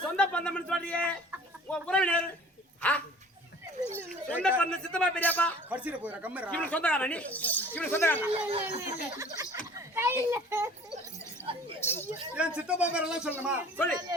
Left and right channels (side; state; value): both; normal; correlation 0.47